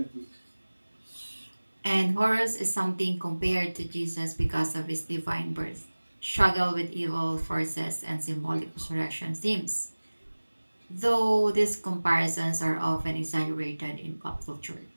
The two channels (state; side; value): inverted; both; correlation -1.00